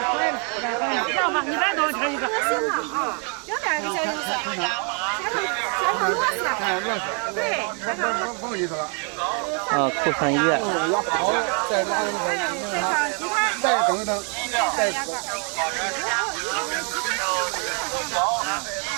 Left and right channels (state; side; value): quieter; left; 37.9 dB